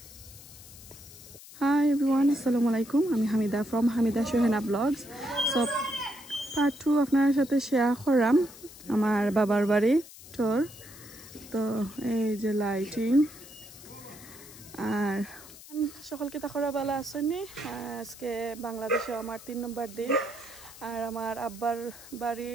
হাই এভরিওয়ান, আসসালামু আলাইকুম। আমি Hamida from Hamida Shuhena blogs. So part 2 আপনার সাথে শেয়ার করাম আমার বাবার বাড়ি ট্যুর। তো এই যে লাইটিং আর সকলকে তাকরা বেলা আসেনি। আজকে বাংলাদেশে আমার 3 নম্বর দিন। আর আমার আব্বার বাড়ি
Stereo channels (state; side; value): noise; left; hiss, 18 dB below the sound